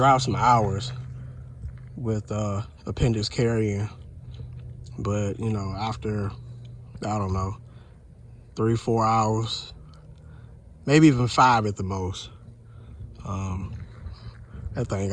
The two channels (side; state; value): both; identical; correlation 1.00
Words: some hours with appendix carrying, but you know, after, I don't know, 3-4 hours, maybe even 5 at the most, that thing